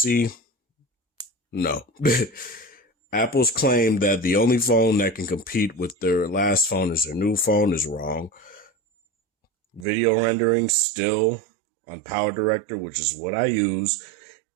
no. Apple's claim that the only phone that can compete with their last phone is their new phone is wrong. Video rendering still on Power Director, which is what I use.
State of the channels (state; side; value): drops out; left; at 9.9 s